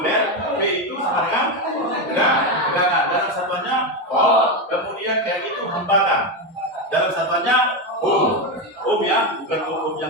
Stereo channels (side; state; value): both; normal; correlation 0.11